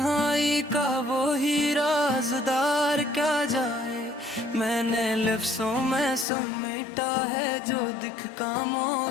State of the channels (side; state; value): right; drops out; at 6.2 s